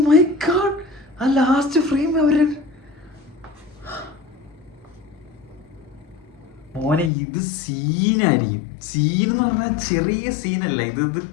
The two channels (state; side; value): drops out; right; at 7.1 s